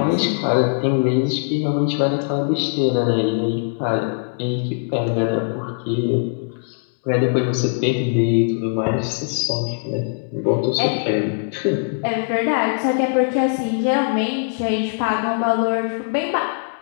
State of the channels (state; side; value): silent; right; digital silence